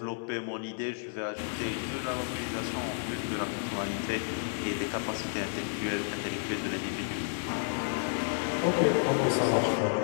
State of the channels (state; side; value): silent; right; digital silence